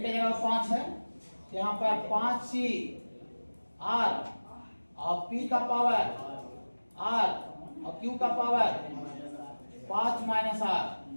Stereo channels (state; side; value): inverted; both; correlation -1.00